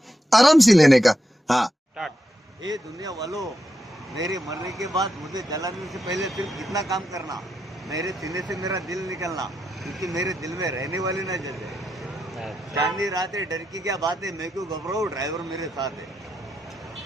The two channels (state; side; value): normal; both; correlation 0.84